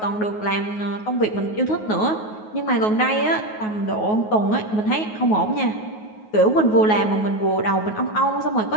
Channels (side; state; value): right; late; 9.4 ms